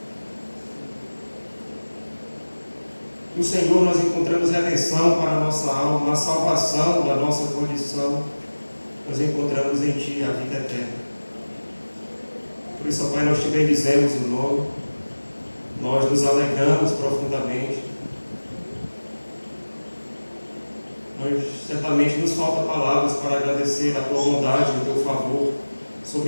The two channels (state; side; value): inverted; both; correlation -1.00